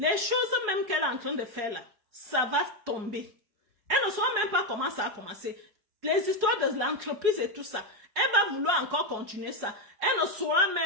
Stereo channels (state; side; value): late; left; 4.8 ms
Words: choses même qu'elle est en train de faire là, ça va tomber. Elle ne saura même pas comment ça a commencé. Les histoires de l'entreprise et tout ça, elle va vouloir encore continuer ça. Elle ne saura